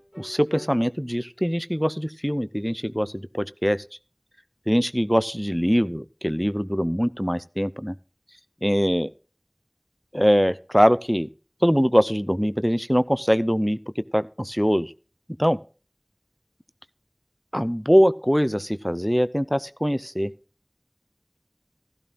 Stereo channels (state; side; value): identical; both; correlation 1.00